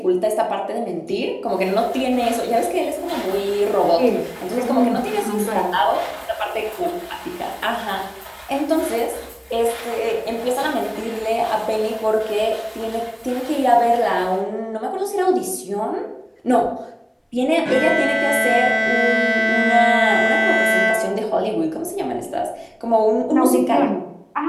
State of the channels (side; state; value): both; identical; correlation 1.00